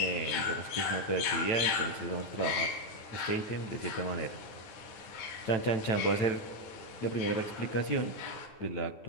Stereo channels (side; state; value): right; late; 9.3 ms